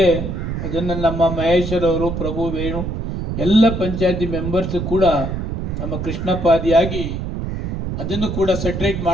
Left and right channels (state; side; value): noise; right; rumble, 4 dB below the sound